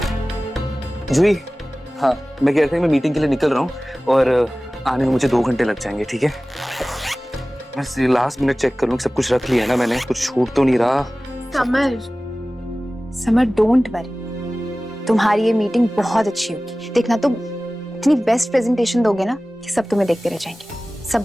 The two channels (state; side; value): normal; both; correlation 0.97